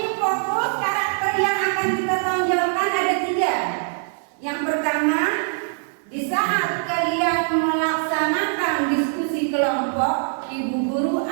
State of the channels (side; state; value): left; silent; 64 dB below the other